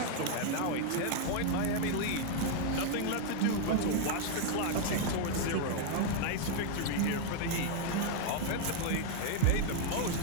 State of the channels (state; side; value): different; both; correlation 0.00